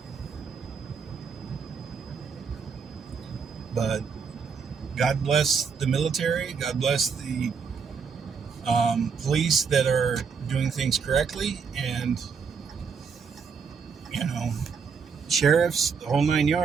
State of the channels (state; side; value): quieter; left; 5.9 dB